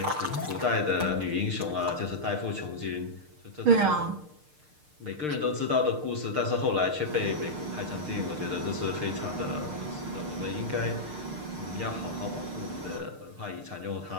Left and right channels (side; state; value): left; late; 6.6 ms